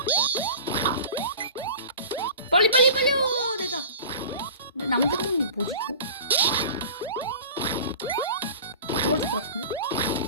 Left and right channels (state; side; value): inverted; both; correlation -0.38